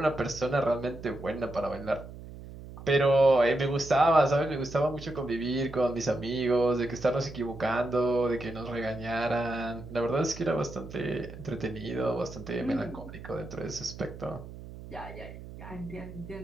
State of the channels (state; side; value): noise; right; hum, 14 dB below the sound